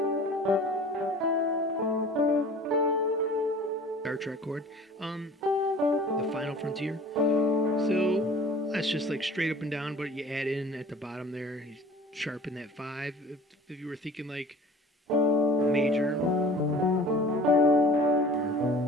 Star Trek chord. The Final Frontier. So that's just like straight up and down, but you add in at the bottom there, you sharpen that 5. If you were thinking like major,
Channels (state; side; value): normal; both; correlation 0.45